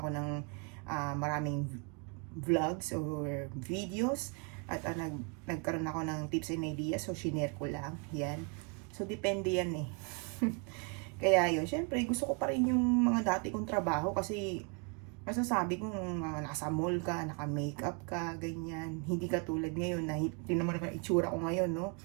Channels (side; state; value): left; quieter; 34.1 dB